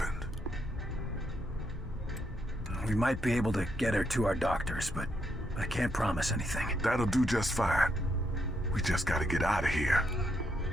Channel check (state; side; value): normal; both; correlation 0.78